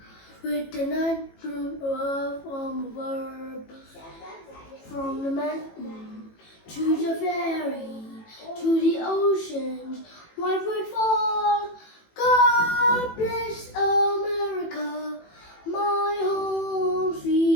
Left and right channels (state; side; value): late; right; 18 ms